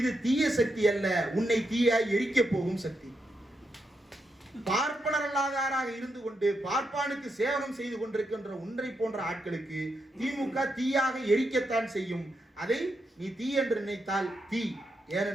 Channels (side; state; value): both; normal; correlation 0.84